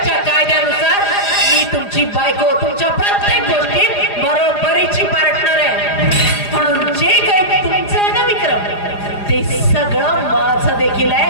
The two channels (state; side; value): late; right; 4.9 ms